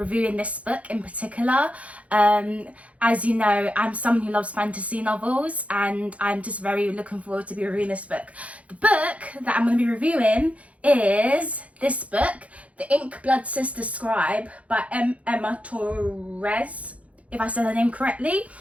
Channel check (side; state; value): left; late; 0.065 ms